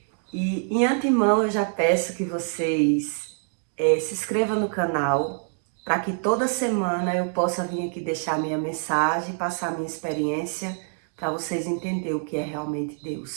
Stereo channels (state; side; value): silent; left; 58 dB below the other